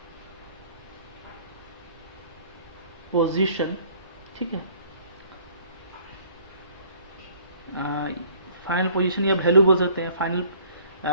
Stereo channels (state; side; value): inverted; both; correlation -0.57